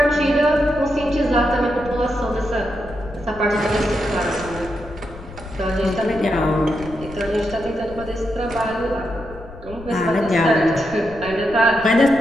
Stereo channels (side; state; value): left; noise; rumble, 16 dB below the sound